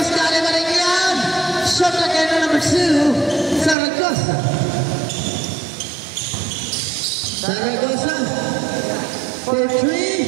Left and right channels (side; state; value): left; drops out; at 3.8 s